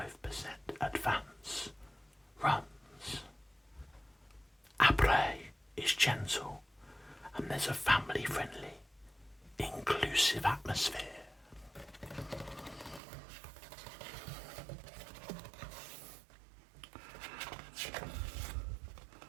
advance runs. Après is gentle, and there's a family-friendly, inclusive atmosphere.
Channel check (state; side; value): drops out; left; at 13.0 s